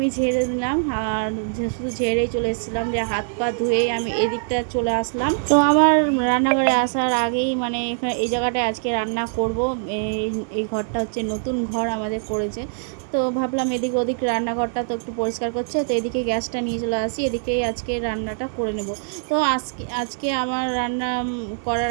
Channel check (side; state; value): left; silent; 63 dB below the other